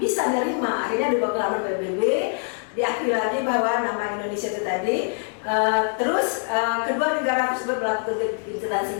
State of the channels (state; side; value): silent; right; 57 dB below the other